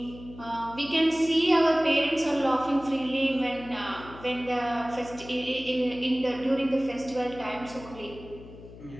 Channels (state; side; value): noise; left; hum, 17 dB below the sound